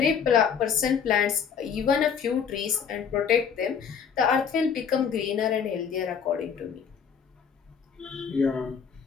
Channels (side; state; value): right; quieter; 7.0 dB